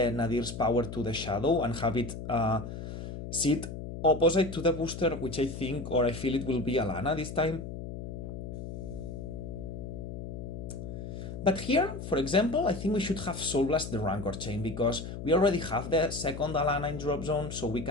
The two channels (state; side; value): noise; left; hum, 8 dB below the sound